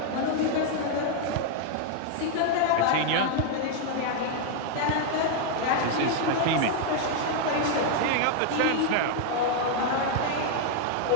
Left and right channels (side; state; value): both; different; correlation 0.00